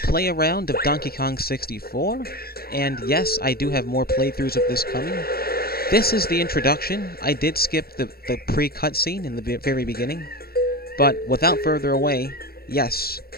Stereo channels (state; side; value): late; right; 0.44 ms